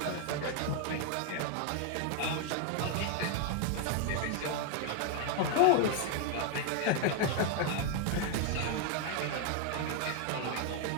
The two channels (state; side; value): different; both; correlation 0.01